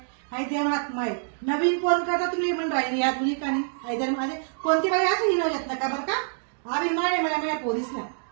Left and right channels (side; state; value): left; silent; digital silence